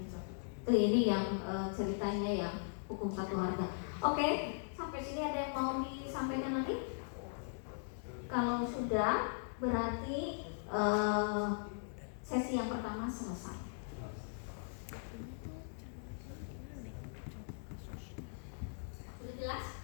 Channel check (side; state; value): right; silent; digital silence